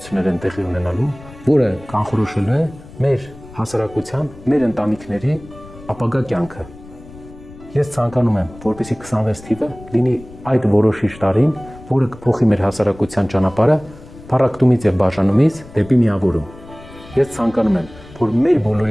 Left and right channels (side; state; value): left; noise; rumble, 19 dB below the sound